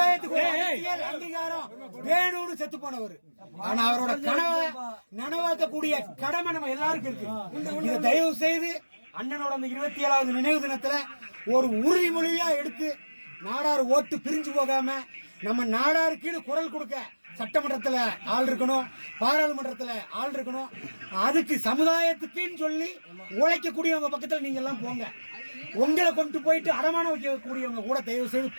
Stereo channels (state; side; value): inverted; both; correlation -1.00